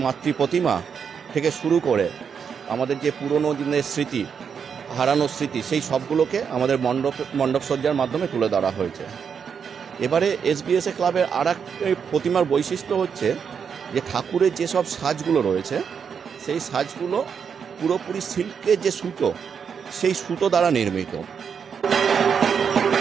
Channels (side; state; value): left; quieter; 6.8 dB